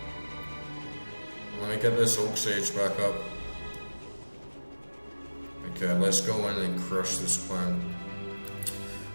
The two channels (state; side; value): inverted; both; correlation -1.00